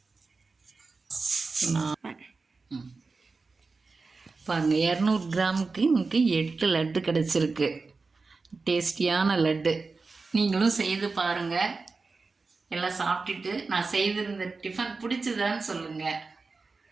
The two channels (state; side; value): quieter; left; 4.1 dB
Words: பாருங்கள், 200 கிராமுக்கு நமக்கு 8 லட்டு கிடச்சிருக்கு. டேஸ்டியான லட்டு. நீங்களும் செய்து பாருங்கள். எல்லாம் சாப்பிட்டுட்டு நான் செய்திருந்த டிஃபன் பிடிச்சதான்னு சொல்லுங்கள்.